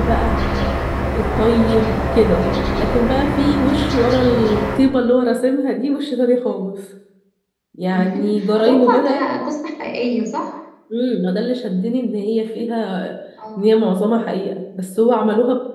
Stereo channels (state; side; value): identical; both; correlation 1.00